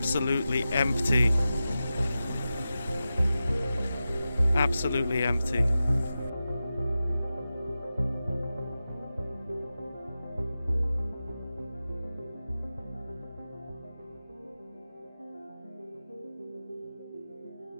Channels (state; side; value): inverted; both; correlation -0.93